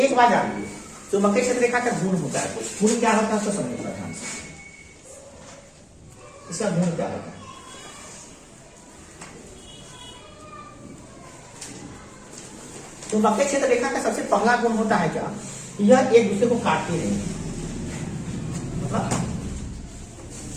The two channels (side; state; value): both; identical; correlation 1.00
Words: बात जान लीजिए, चुंबकीय क्षेत्र रेखा का गुण होता है, गुण क्या होता है उसको समझिए ध्यान से, इसका गुण क्या होता है। चुंबकीय क्षेत्र रेखा का सबसे पहला गुण होता है क्या, यह एक दूसरे को काटती नहीं,